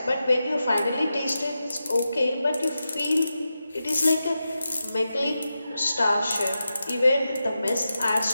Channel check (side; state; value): both; inverted; correlation -0.90